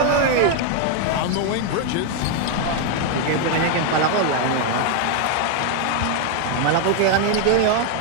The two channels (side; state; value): both; different; correlation 0.00